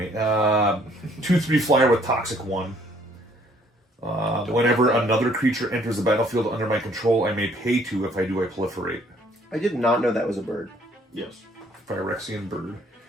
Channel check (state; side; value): normal; both; correlation 0.62